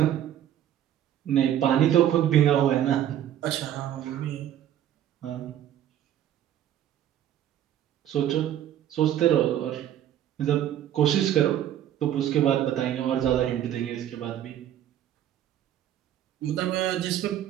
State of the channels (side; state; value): left; quieter; 11.3 dB